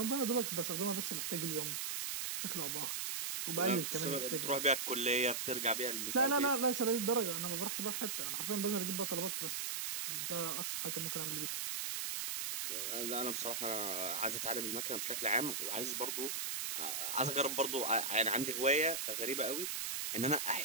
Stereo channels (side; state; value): right; noise; hiss, 1 dB below the sound